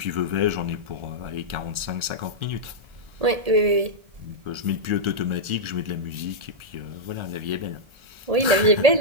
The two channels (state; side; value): late; left; 1.4 ms